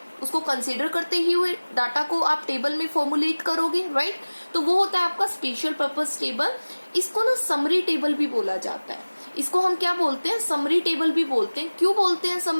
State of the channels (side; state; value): both; inverted; correlation -1.00